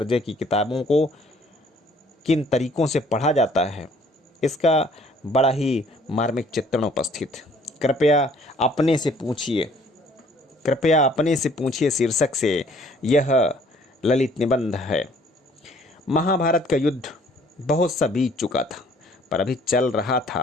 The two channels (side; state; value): both; normal; correlation 0.59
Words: की किताबों को किन तरीकों से पढ़ा जाता है। इसका बड़ा ही मार्मिक चित्रण उपस्थित। कृपया अपने से पूछिए शीर्षक से यह ललित निबंध है। महाभारत का युद्ध बहुत सा बीत चुका था, पर अभी चल रहा